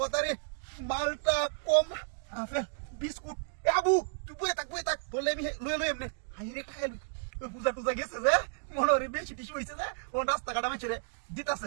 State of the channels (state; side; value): silent; left; digital silence